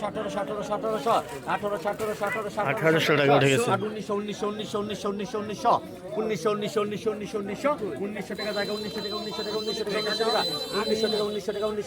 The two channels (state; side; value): identical; both; correlation 1.00